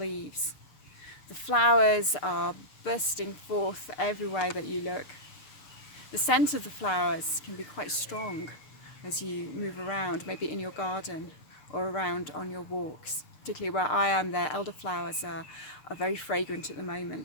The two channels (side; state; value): right; late; 6.6 ms